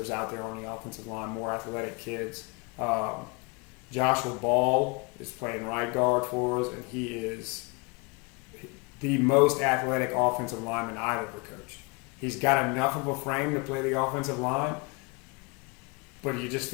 out there on the offensive line, more athletic kids. Joshua Ball is playing right guard for us, and he is the most athletic offensive lineman I've ever coached. He's got enough of a frame to play the offensive line, but you just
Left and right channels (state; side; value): quieter; right; 30.4 dB